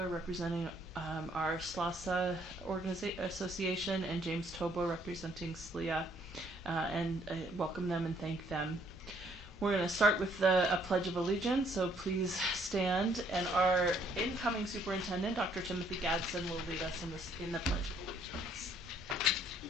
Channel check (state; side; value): normal; both; correlation 0.66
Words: representing our SLASA Association, and James Tobo representing SLIA, and welcome them and thank them. We're going to start with a Pledge of Allegiance, so please stand, and our incoming superintendent, Dr. Timothy Gadsden, will lead us in the Pledge of Allegiance.